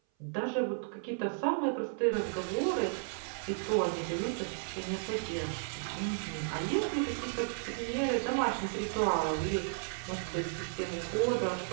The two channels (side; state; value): left; silent; 55 dB below the other